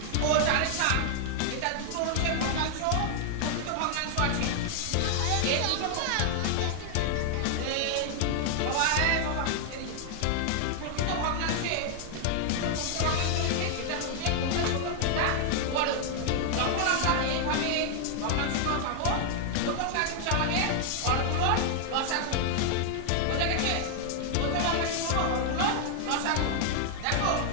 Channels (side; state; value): both; different; correlation 0.00